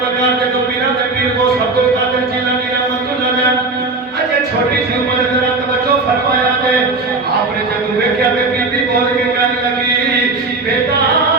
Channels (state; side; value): quieter; left; 3.5 dB